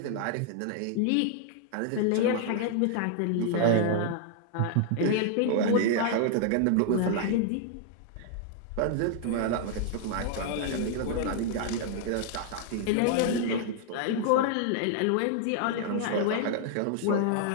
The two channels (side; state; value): both; different; correlation 0.00